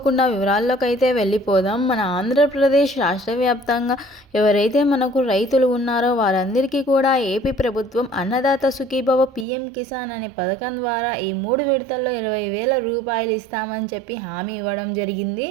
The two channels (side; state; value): left; drops out; at 9.5 s